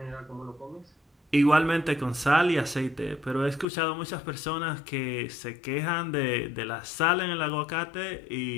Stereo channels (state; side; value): drops out; right; at 3.7 s